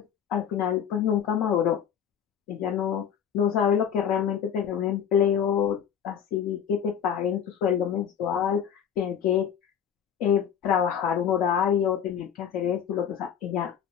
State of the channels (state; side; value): quieter; right; 8.5 dB